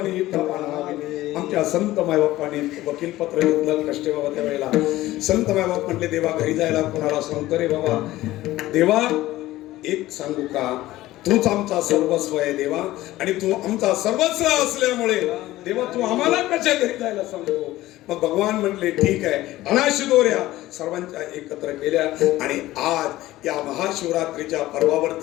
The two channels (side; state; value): right; quieter; 16.3 dB